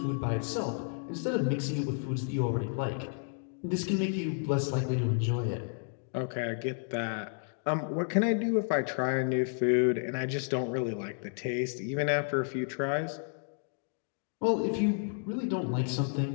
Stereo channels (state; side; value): silent; right; 57 dB below the other